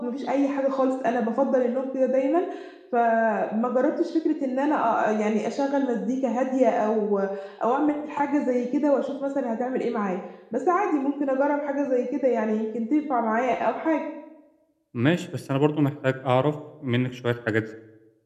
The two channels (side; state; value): both; identical; correlation 1.00